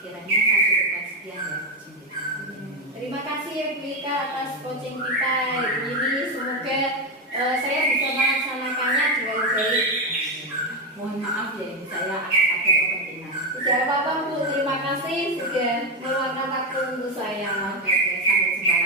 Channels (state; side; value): normal; both; correlation 0.09